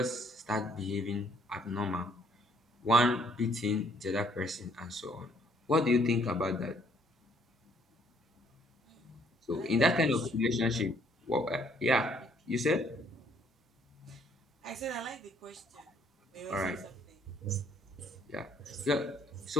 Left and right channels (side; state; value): both; normal; correlation 0.64